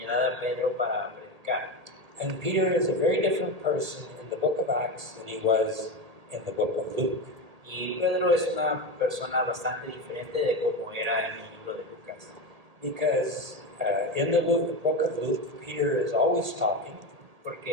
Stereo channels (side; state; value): left; late; 1.8 ms